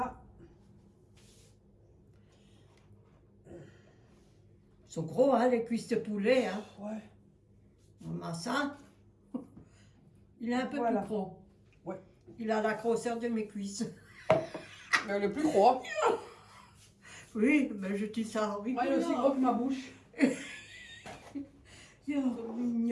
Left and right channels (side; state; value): both; identical; correlation 1.00